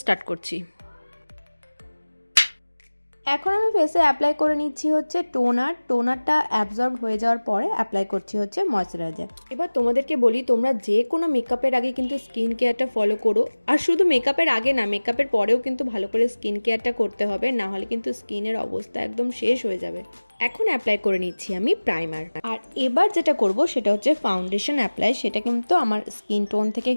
স্টার্ট করছি। এখন আমি ফেসে অ্যাপ্লাই করে নিচ্ছি হচ্ছে টোনারটা অ্যাবজর্ব হয়ে যাওয়ার পরে অ্যাপ্লাই করছি হচ্ছে ময়শ্চারাইজার। এবার তোমাদেরকে বলি, তোমরা যে কোনো মেকআপের আগে কিন্তু স্কিন কেয়ারটা ফলো করো। আর শুধু মেকআপের আগে না, মেকআপের পরেও কিন্তু ভালো করে স্কিন কেয়ারটা করতে হবে, না হলে কিন্তু স্কিনের অবস্থা একদম শেষ হয়ে যাবে। এখন অ্যাপ্লাই করে নিচ্ছি আমি প্রাইমার। আর এবার যেটা করব সেটা হচ্ছে ফাউন্ডেশন অ্যাপ্লাই। সেটা কিন্তু আমার স্কিন টোন থেকে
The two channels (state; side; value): inverted; both; correlation -1.00